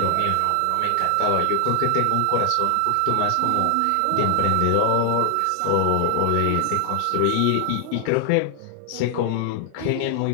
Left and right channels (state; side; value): different; both; correlation 0.00